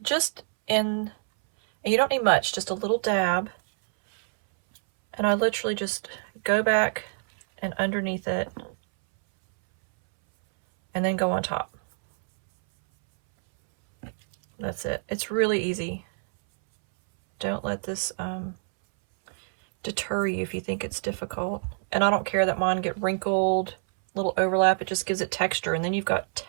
Just in, and you don't need much, just a little dab. And I literally just go back and underneath it and then go on top. That's it. It's really easy. Don't let this deter you if you think it's difficult. And I don't care that mine get wrinkled, little overlap. It just gives it texture. And then you've got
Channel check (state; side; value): silent; left; 61 dB below the other